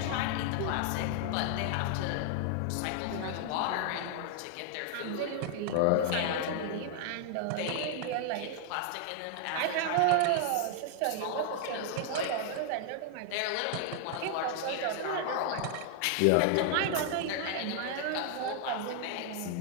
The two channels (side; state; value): both; different; correlation 0.00